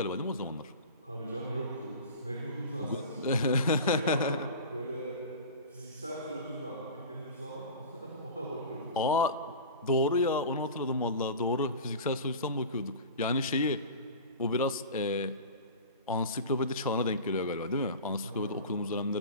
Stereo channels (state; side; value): inverted; both; correlation -0.33